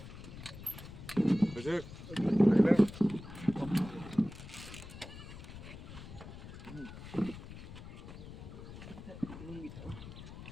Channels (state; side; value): noise; left; rumble, 13 dB below the sound